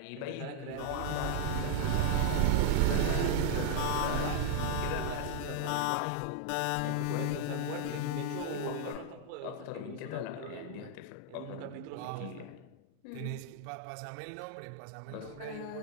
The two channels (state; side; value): different; both; correlation 0.00